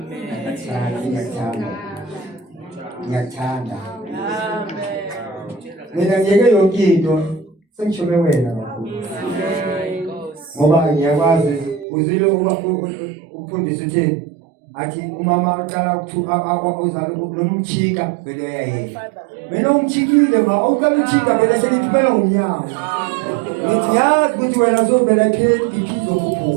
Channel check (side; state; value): left; drops out; at 11.9 s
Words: Ngiyakuthanda. Mina ngiyeke yonke into sengishome wena kakhulu. Ngoba ngiyakwazi uzile umfundisi utheni athi umama uqala uzala lo mchika vele uyayela. Mina umchikile ma uqala uchika vele seniphela ngomnyango. Ngithi yazi ukuthi wena uzobela BP